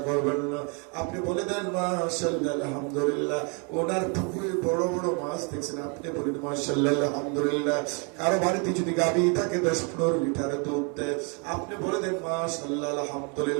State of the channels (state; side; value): quieter; left; 35.4 dB